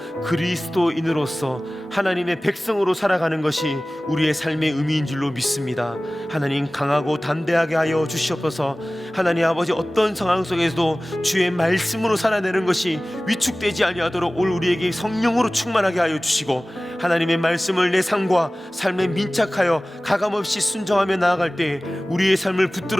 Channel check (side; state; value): both; normal; correlation 0.98